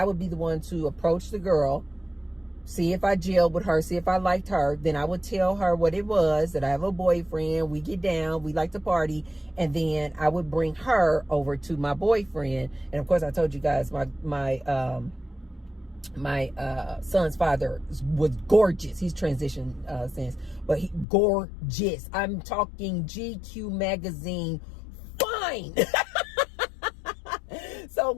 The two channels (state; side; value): drops out; right; at 21.1 s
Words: would be the one to approach the girl, see if I gelled with her, see if I liked her. Then I would tell her what it was, that I have a boyfriend. We get down, we like to party. And then I would bring her over to my boyfriend. And of course, I told you guys my son's father was gorgeous. He's transitioned since, but he gorgeous. I'm talking GQ magazine fine. So